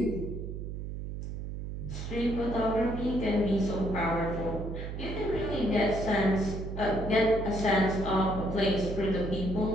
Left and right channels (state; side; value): noise; right; hum, 6 dB below the sound